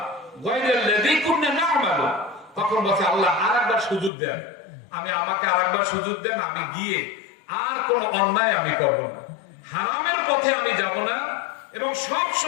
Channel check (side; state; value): right; drops out; at 4.1 s